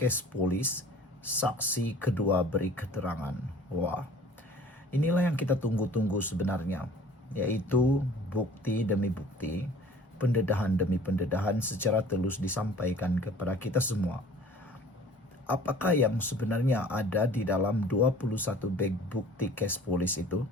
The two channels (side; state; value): both; normal; correlation 0.48